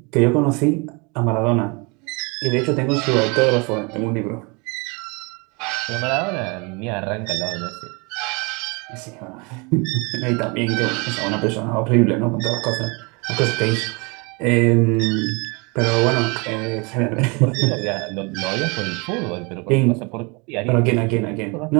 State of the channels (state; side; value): quieter; left; 29.8 dB